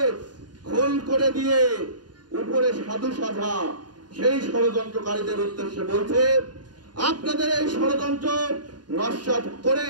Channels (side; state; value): left; late; 0.70 ms